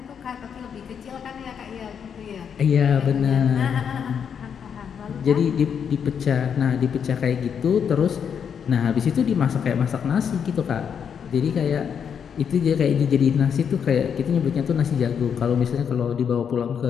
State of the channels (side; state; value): right; quieter; 7.5 dB